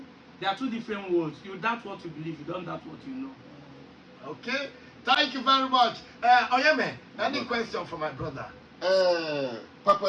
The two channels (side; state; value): both; identical; correlation 1.00